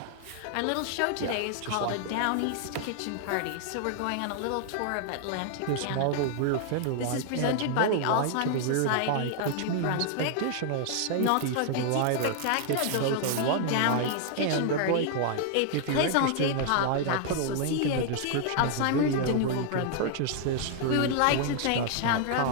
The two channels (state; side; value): different; both; correlation 0.00